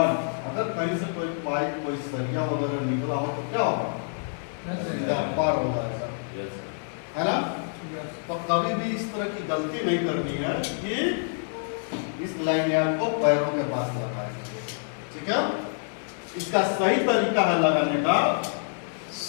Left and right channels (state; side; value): silent; right; digital silence